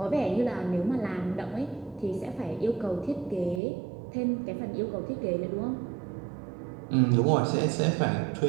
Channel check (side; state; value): left; drops out; at 3.6 s